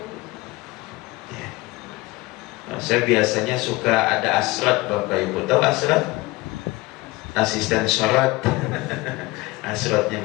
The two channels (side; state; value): right; quieter; 21.6 dB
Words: Nah, saya biasanya suka ada asrat Bapak Ibu. Tahu asrat? Asisten sholat. Asratnya